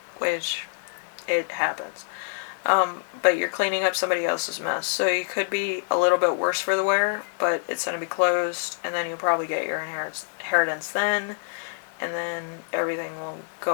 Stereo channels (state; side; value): silent; right; 61 dB below the other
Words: which it happens. But you're cleaning up somebody else's mess. So you could be a little bit worse for the wear, but it's going to be closed, and then you'll probably get your inheritance then, and then everything will